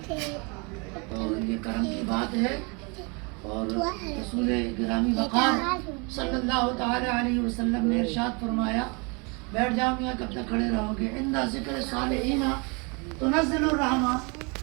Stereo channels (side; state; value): left; quieter; 31.2 dB